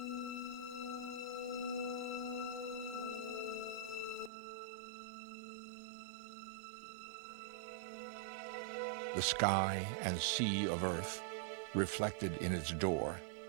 The sky and sea of Earth reflected in its door,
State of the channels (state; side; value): drops out; left; at 4.3 s